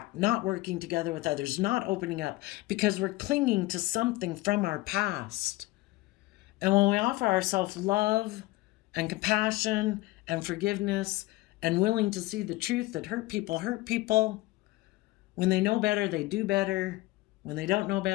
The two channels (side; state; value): right; quieter; 19.5 dB